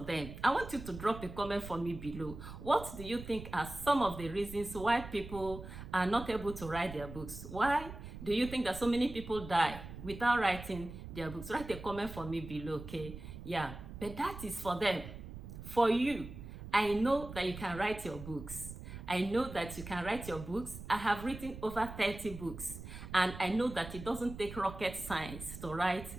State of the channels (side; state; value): right; noise; rumble, 11 dB below the sound